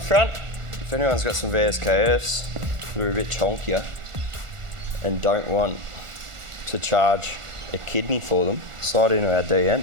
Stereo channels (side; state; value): left; late; 1.4 ms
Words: front. If anyone's got some VSKFs that are a bit chonkier and don't want to charge a kidney for them, slide into our